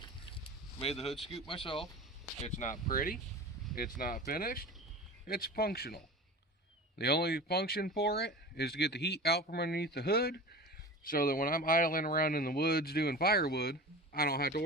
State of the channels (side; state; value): both; normal; correlation 0.34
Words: Made the hood scoop myself. It's not pretty, it's not finished, it's functional. The only function for it is to get the heat out from underneath the hood so that when I'm idling around in the woods doing firewood, I don't have to